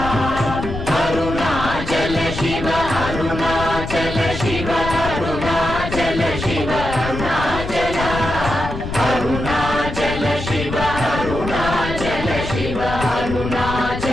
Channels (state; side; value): noise; left; rumble, 7 dB below the sound